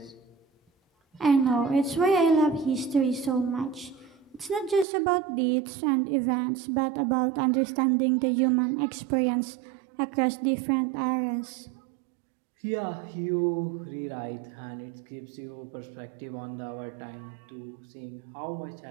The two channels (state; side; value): drops out; left; at 4.9 s